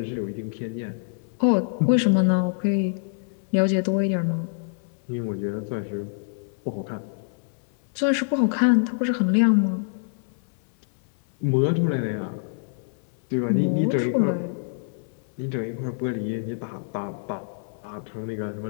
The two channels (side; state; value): right; silent; 59 dB below the other